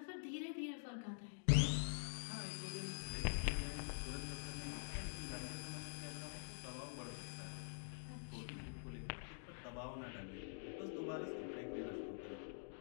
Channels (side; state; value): right; silent; digital silence